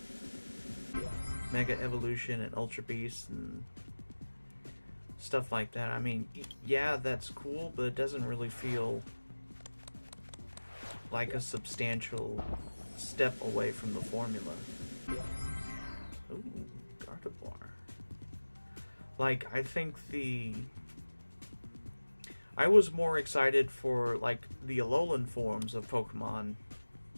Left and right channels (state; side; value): inverted; both; correlation -1.00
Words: Mega Evolution and Ultra Beast and stuff like that. I mean, yeah, that's cool, but it doesn't really feel like a substantial step away from the formula. Ooh, Gardevoir. Like, I think I was more excited for, like, the Alolan forms of Pokemon